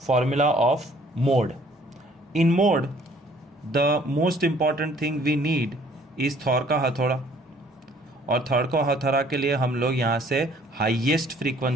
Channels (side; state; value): both; normal; correlation 0.58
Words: formula of mode. In mode the most important thing we need is Thor का हथौड़ा, और थॉर का हथौड़ा के लिए हम लोग यहाँ से हाईएस्ट